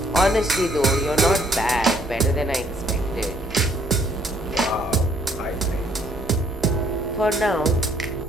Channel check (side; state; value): both; normal; correlation 0.64